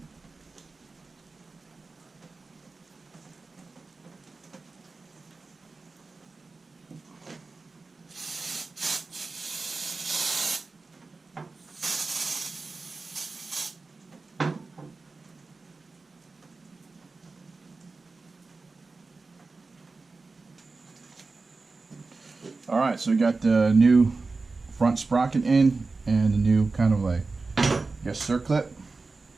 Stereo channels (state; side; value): quieter; left; 3.8 dB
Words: Alright, so we got the new front sprocket in and the new kind of like, I guess, circlip.